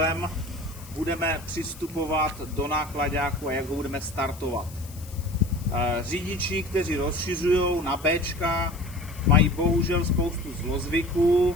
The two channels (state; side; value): noise; left; hiss, 19 dB below the sound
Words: budeme přistupovat do náklaďáku a jak ho budeme startovat. Řidiči, kteří rozšiřují na Bčka, mají bohužel spoustu zlozvyků,